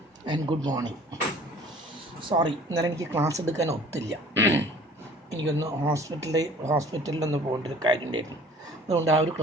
and good morning. Sorry, ഇന്നലെ എനിക്ക് class എടുക്കാൻ ഒത്തില്ല. എനിക്കൊന്ന് ഹോസ്പിറ്റലിലൊന്ന് പോകേണ്ട ഒരു കാര്യം ഉണ്ടായിരുന്നു. അതുകൊണ്ട് ആ ഒരു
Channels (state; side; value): normal; both; correlation 0.50